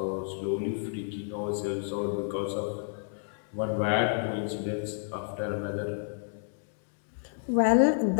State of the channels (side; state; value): right; silent; digital silence